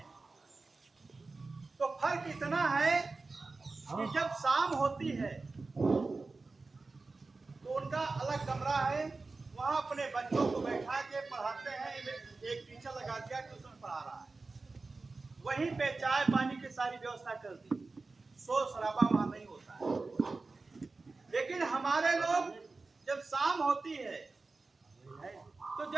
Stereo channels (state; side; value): quieter; left; 3.7 dB